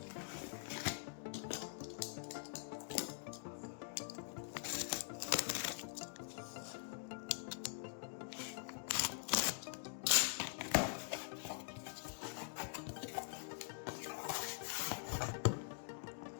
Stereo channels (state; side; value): silent; right; digital silence